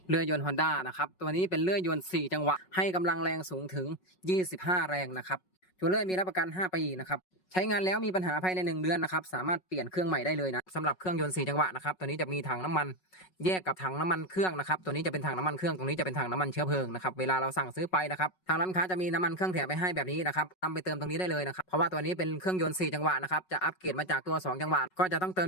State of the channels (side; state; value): right; late; 5.4 ms